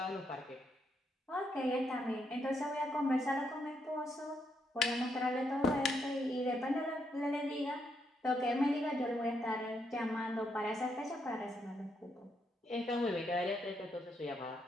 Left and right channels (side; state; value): both; normal; correlation 0.78